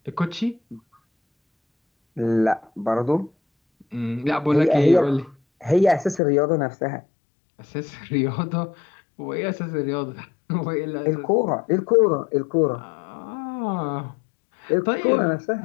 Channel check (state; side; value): drops out; right; at 6.2 s